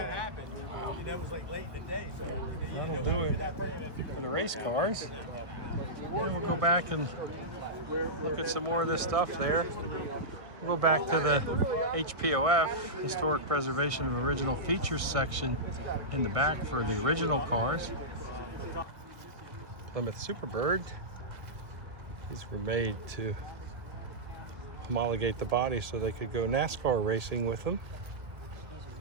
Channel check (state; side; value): late; left; 1.6 ms